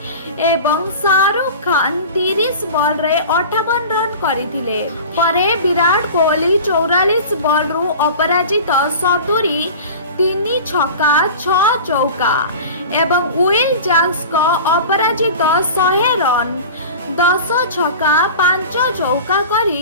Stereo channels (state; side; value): inverted; both; correlation -0.36